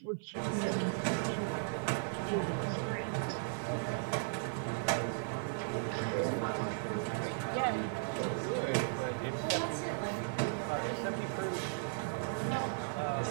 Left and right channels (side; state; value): left; silent; 54 dB below the other